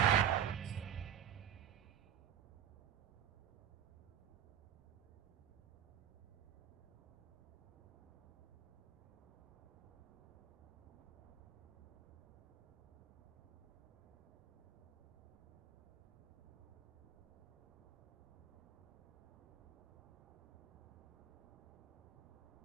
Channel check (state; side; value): quieter; left; 9.8 dB